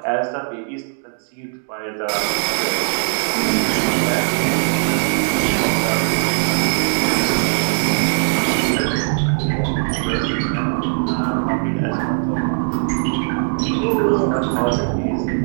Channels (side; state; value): left; silent; 66 dB below the other